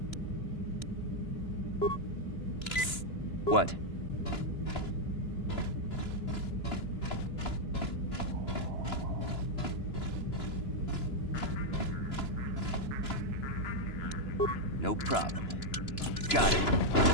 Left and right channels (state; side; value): late; right; 2.9 ms